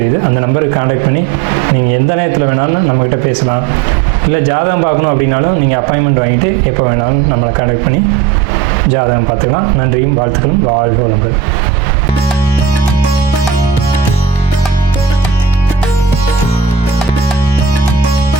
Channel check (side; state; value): left; quieter; 6.8 dB